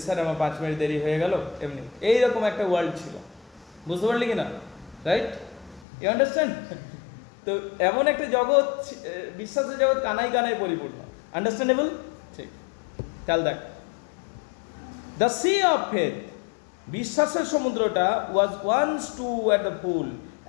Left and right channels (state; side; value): drops out; right; at 5.9 s